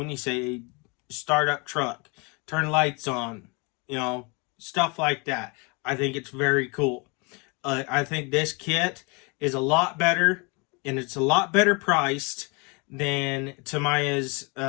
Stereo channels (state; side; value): quieter; right; 30.4 dB